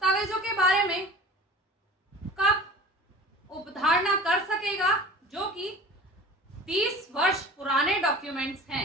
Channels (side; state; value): both; normal; correlation 0.40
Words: के बारे में कब उपधारणा कर सकेगा जो कि 30 वर्ष पुराने डॉक्यूमेंट्स